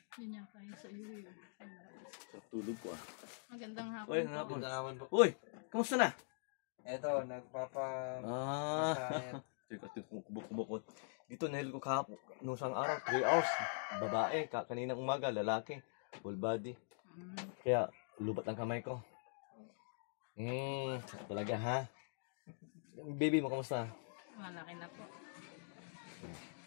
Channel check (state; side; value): silent; right; digital silence